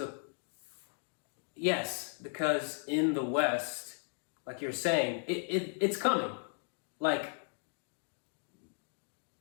in the West, like you're saying, it's coming. Like,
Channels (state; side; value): silent; right; 54 dB below the other